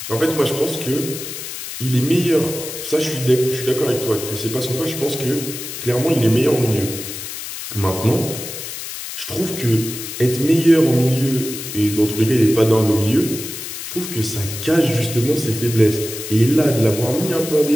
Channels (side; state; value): left; noise; hiss, 8 dB below the sound